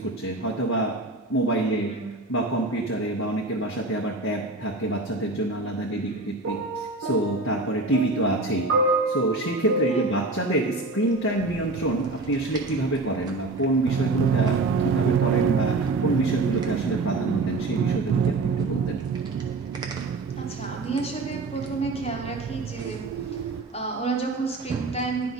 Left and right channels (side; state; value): left; quieter; 3.2 dB